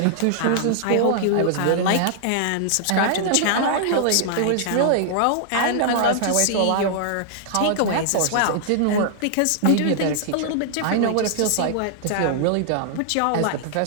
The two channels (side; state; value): both; different; correlation -0.01